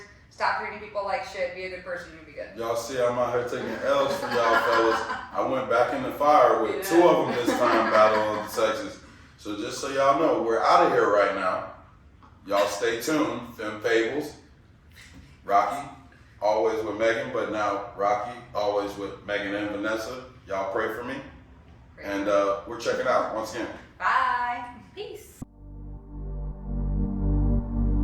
Stop treating people like shit. Be a good person. You'll be good. Y'all see, I'm out here taking L's for y'all fellas. I went back in the fire with 2 of them this time, Battle of the Sexes. So just so y'all know, we're out of here right now. Y'all stay tuned. Femme Fables, Rocky, always with Megan, but now Rocky, always with Megan and Vanessa. Y'all pray for me. And we're checking out once again. Bye.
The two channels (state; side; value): identical; both; correlation 1.00